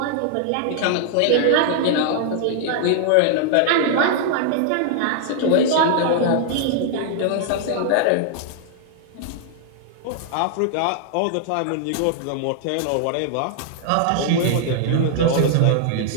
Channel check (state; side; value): different; both; correlation 0.00